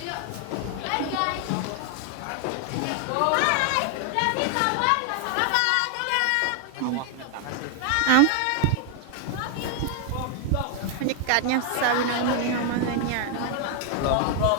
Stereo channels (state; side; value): different; both; correlation 0.00